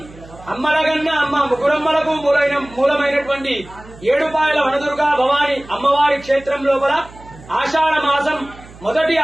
అమ్మలగన్న అమ్మ ముగ్గురమ్మలకు మూలమైనటువంటి ఏడుపాయల వనదుర్గా భవానీ అమ్మవారి క్షేత్రం లోపల ఆషాఢ మాసం మొదటి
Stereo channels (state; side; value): noise; right; hum, 20 dB below the sound